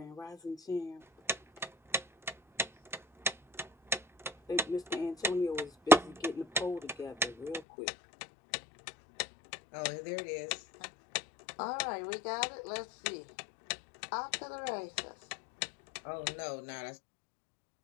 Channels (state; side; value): drops out; right; at 7.6 s